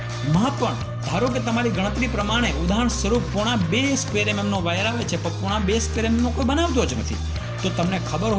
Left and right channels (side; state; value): both; identical; correlation 1.00